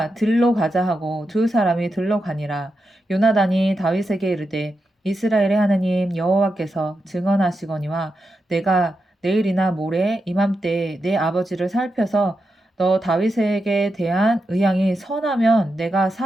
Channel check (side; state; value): both; normal; correlation 0.87